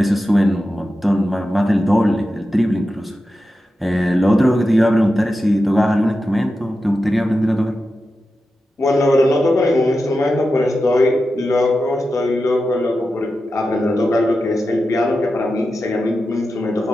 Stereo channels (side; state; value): both; normal; correlation 0.91